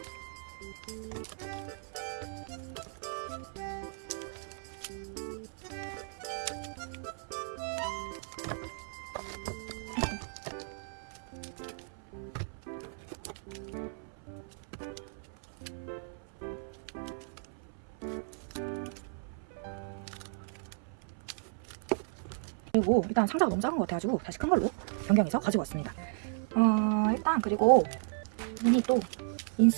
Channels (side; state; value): left; silent; 55 dB below the other